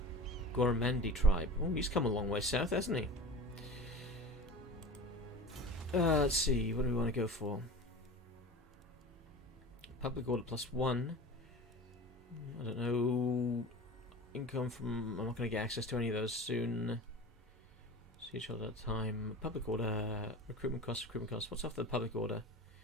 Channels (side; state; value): both; normal; correlation 0.35